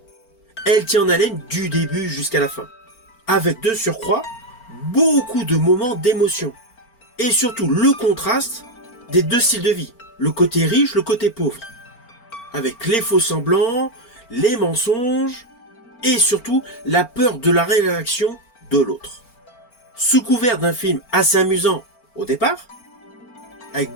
elle tient en haleine du début jusqu'à la fin. Avec de surcroît, beaucoup de moments d'émotion. Et surtout le contraste des deux styles de vie. Le côté riche, le côté pauvre. Avec les faux semblants, les mensonges, et surtout la peur de la réaction de l'autre. Sous couvert d'un film assez amusant au départ, avec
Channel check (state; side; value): late; right; 4.4 ms